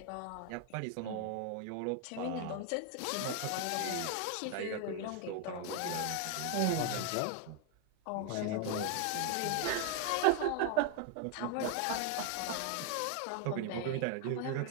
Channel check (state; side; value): different; both; correlation 0.01